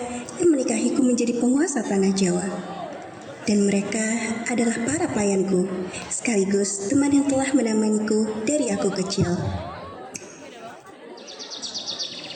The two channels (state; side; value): identical; both; correlation 1.00